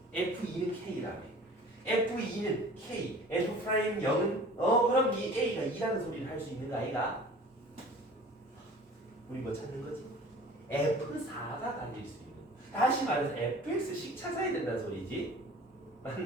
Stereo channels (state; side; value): normal; both; correlation 0.45